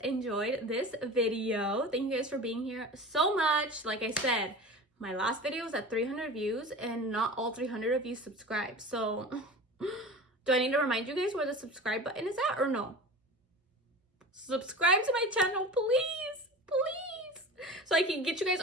enjoyed this video. Thank you guys for being here so much. Like I said, my last video was at 300 views and not all 300 of you subscribed. So do I need to remind you guys where the subscribe button is at or no? Subscribe to my channel, please, please, so I can get you guys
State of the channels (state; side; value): normal; both; correlation 0.35